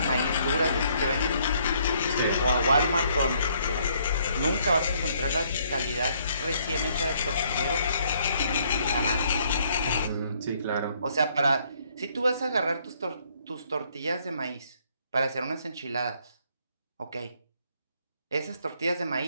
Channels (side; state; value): both; inverted; correlation -0.67